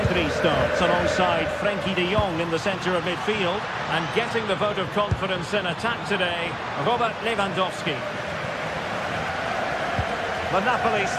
starts alongside Frenkie de Jong in the centre of midfield. And getting the vote of confidence in attack today, Robert Lewandowski. The Napoli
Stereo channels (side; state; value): both; identical; correlation 1.00